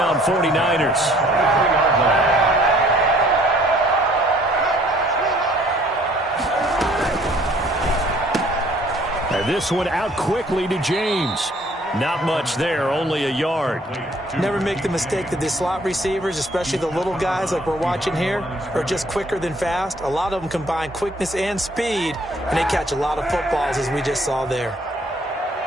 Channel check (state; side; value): normal; both; correlation 0.59